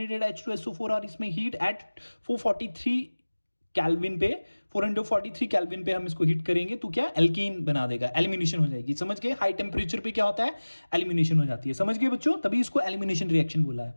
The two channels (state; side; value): inverted; both; correlation -1.00